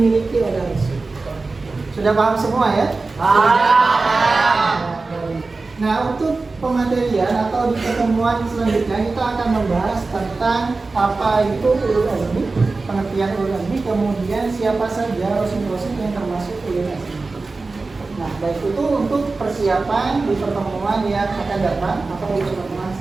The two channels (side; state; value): left; quieter; 3.7 dB